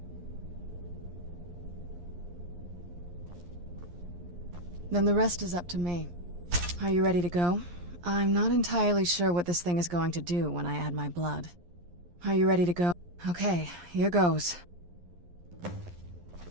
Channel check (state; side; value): late; left; 11 ms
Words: Then the rest is up to me. Are you ready to go? I'm not entirely sure what this thing is going to do when I add my blood. Are you ready to go? Okay, here goes.